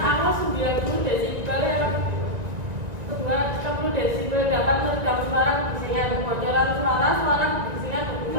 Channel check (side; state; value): left; late; 1.9 ms